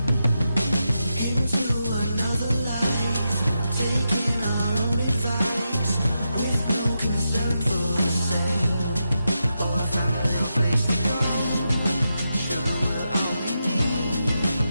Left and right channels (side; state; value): both; inverted; correlation -0.87